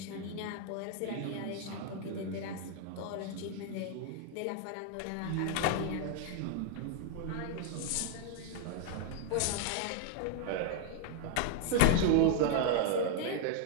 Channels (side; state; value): both; different; correlation 0.00